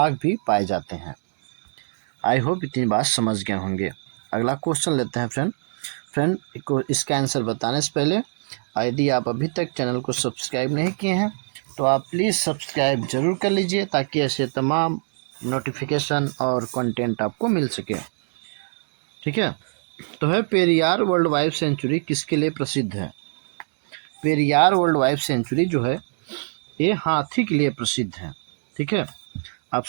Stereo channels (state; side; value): silent; left; digital silence